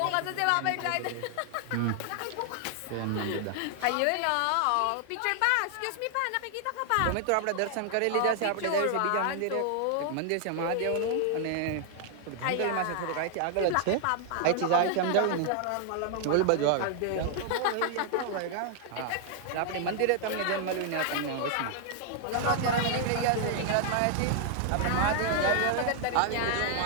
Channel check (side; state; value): both; different; correlation 0.00